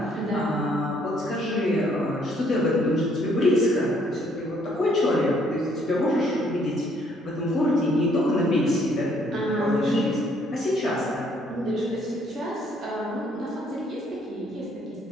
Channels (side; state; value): both; normal; correlation 0.66